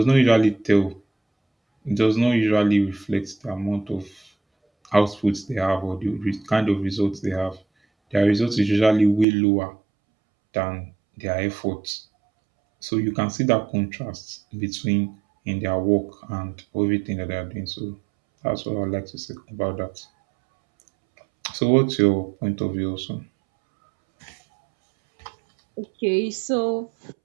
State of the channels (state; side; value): drops out; left; at 9.2 s